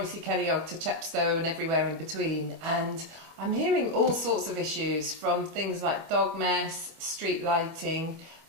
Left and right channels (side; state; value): left; late; 25 ms